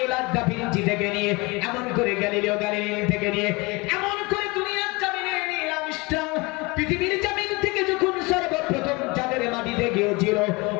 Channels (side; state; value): right; quieter; 25.5 dB